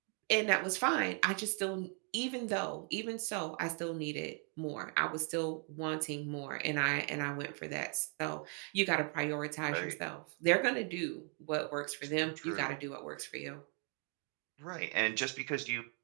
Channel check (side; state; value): left; quieter; 39.6 dB